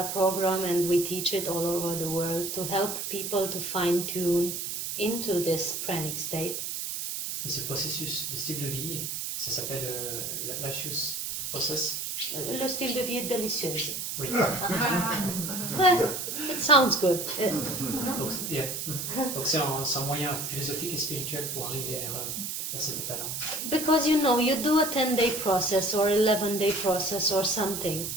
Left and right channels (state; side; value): noise; right; hiss, 4 dB below the sound